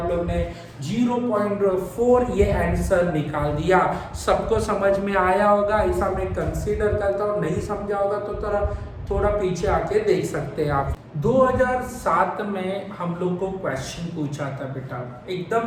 लोग ने 0.4 ये आंसर निकाल दिया। सबको समझ में आया होगा, ऐसा मैं कंसीडर करता हूँ। नहीं समझा होगा तो थोड़ा पीछे आके देख सकते हैं आप। 2007 में हम लोग को क्वेश्चन पूछा था बेटा,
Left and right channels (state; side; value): identical; both; correlation 1.00